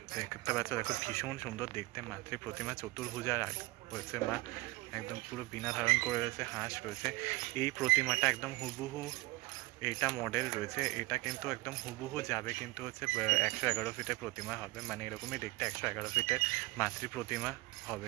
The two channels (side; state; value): left; quieter; 21.3 dB